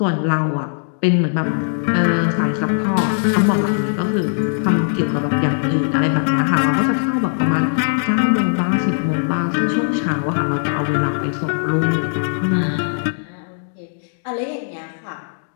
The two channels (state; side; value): silent; right; digital silence